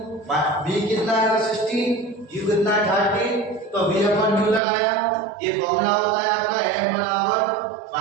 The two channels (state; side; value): drops out; left; at 4.6 s